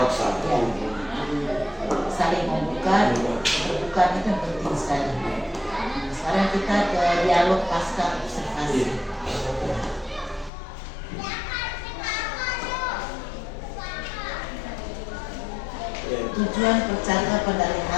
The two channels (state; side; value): drops out; right; at 10.5 s